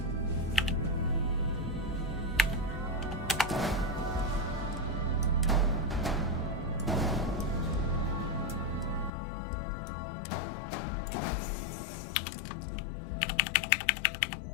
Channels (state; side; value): drops out; right; at 9.1 s